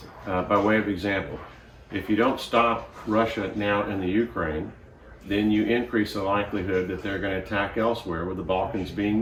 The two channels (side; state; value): both; identical; correlation 1.00